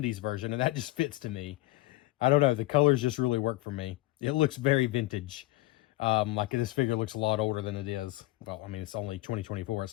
version, and that just fits to me. I don't know, the colors just really work for me. It looks very vintage. Like this figure looks a lot older than it is. Well, I mean, it's only 2024.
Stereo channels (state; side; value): quieter; right; 18.5 dB